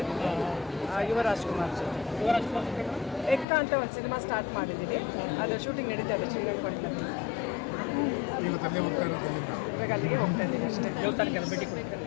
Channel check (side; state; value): right; drops out; at 3.5 s